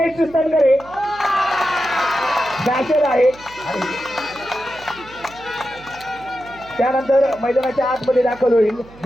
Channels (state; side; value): noise; right; hum, 22 dB below the sound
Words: सनगरे बॅचर आहे. त्यानंतर मैदानाच्या आतमध्ये दाखल होईल